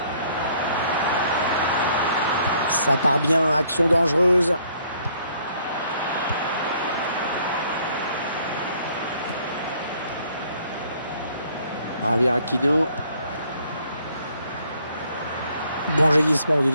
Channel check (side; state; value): both; inverted; correlation -0.64